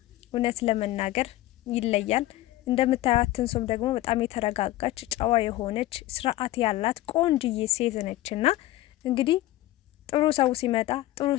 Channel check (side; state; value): right; quieter; 16.3 dB